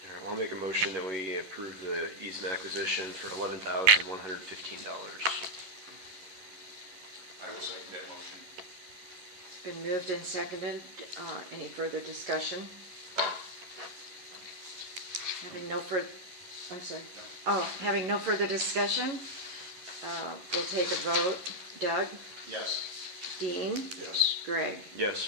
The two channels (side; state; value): left; late; 11 ms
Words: I'll make a motion that we approve the easement acquisition for $11,115. I will second that motion. It's been moved and seconded. Any further discussion? Having no further, I'm sorry. Oh, having no further discussion, we'll take a vote. Doug? Yes. Dean? Yes. Greg? Yes.